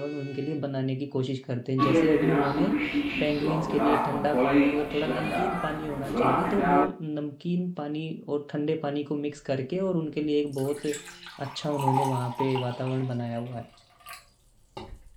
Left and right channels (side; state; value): both; identical; correlation 1.00